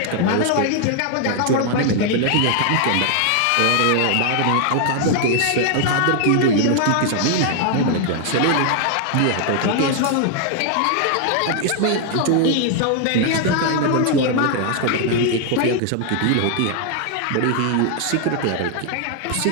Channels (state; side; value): different; both; correlation 0.00